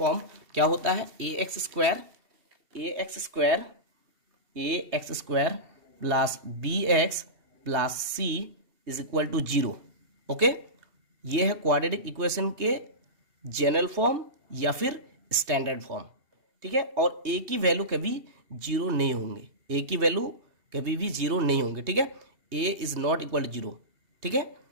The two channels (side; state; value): left; late; 2.7 ms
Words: क्या होता है, ax² plus bx plus c is equal to 0। Okay, ये है क्वाड्रेटिक इक्वेशन के जनरल फॉर्म या फिर स्टैंडर्ड फॉर्म, ठीक है। और ए की वैल्यू कभी 0 नहीं होंगे, ए की वैल्यू कभी भी 0 नहीं होंगे, ठीक है। ए इज नॉट इक्वल टू 0, ठीक है।